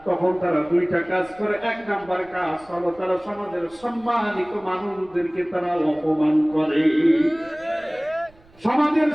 তখন তারা দুইটা কাজ করে। এক নাম্বার কাজ হলো তারা সমাজের সম্মানিত মানুষদেরকে তারা অপমান করে। সমাজের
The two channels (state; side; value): noise; right; rumble, 28 dB below the sound